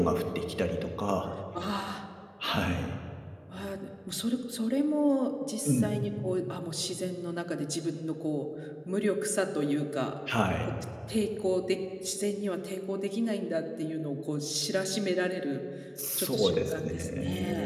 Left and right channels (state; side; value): identical; both; correlation 1.00